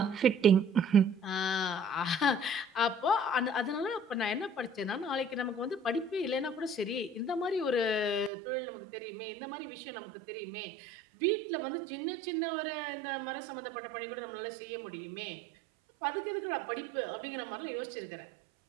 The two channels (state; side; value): drops out; left; at 8.3 s